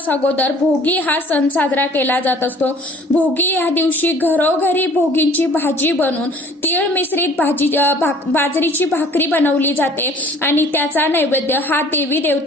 अगोदर भोगी हा सण साजरा केला जात असतो. भोगी या दिवशी घरोघरी भोगींची भाजी बनवून तीळ मिश्रित बाजरीची भाकरी बनवली जाते आणि त्याचा नैवेद्य हा देवी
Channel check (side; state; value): both; normal; correlation 0.52